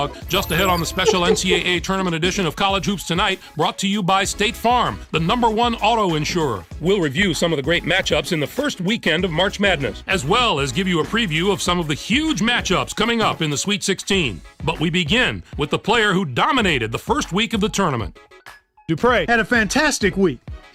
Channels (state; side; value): identical; both; correlation 1.00